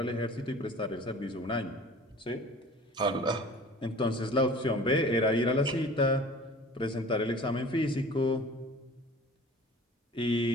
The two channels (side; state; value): both; normal; correlation 0.44